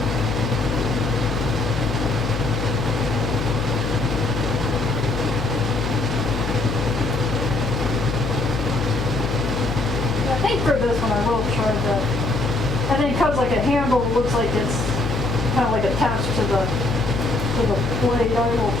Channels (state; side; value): noise; left; hum, 4 dB below the sound